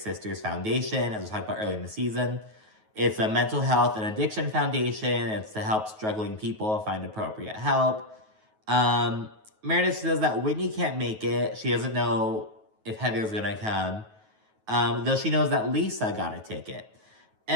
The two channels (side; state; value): left; late; 9.3 ms